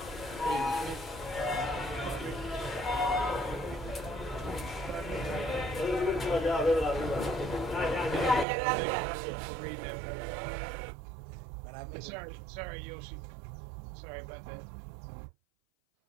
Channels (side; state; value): left; drops out; at 8.5 s